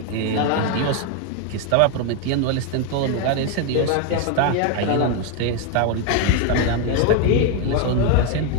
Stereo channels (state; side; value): different; both; correlation 0.01